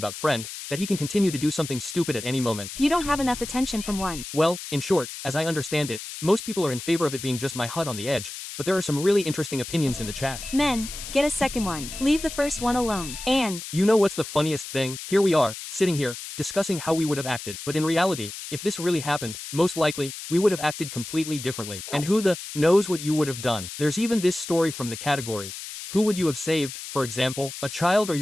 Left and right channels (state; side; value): noise; left; hiss, 10 dB below the sound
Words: friend, that he can continue to do something stupid at any moment. You don't have enough attention from one. Well, in short, as I understand it, most people are in favor of it being just my hut on the edge, but there are some really interesting opinions in the chat. Men, get a second one. Leave the first one alone. And you know what's the funniest thing? Here we are, sitting here, discussing how we would have acted, but in reality, if this really happened, most likely, we would have acted completely differently. And who the knows what you would have done? There's even this story from the category. Who would you have saved, for example, a child or